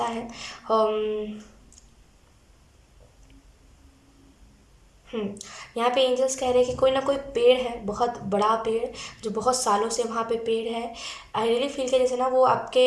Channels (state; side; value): identical; both; correlation 1.00